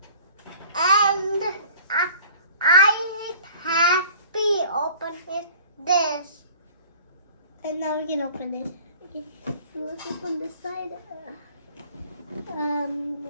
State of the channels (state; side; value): inverted; both; correlation -0.47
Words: and I happy open this. And now we can open it. Okay, so let's open this side.